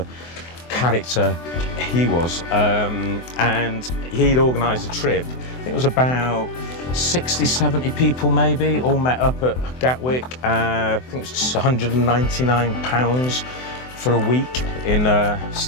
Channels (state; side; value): late; right; 24 ms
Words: character he was. And he'd organised a trip. I think it was about 60, 70 people maybe, all met up at Gatwick. I think it was just £199 for a week,